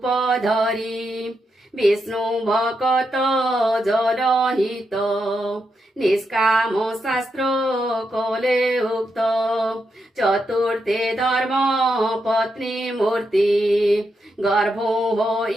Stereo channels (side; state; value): both; normal; correlation 0.84